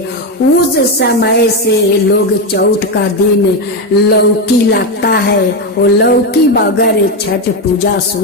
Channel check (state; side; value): normal; both; correlation 0.10